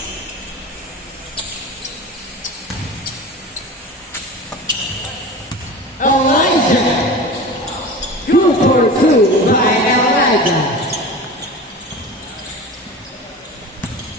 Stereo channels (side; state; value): both; normal; correlation 0.33